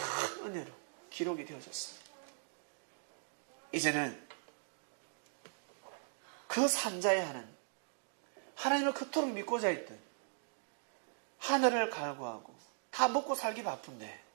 은혜로 기록이 되어졌습니다. 이제는 그 산자의 하나님을 그토록 믿고자 했던 하늘을 갈구하고 다 먹고 살기 바쁜데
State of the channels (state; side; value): silent; left; digital silence